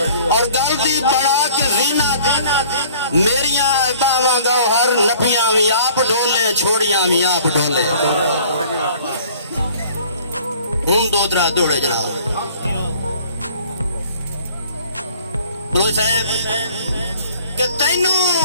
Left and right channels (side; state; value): both; inverted; correlation -0.52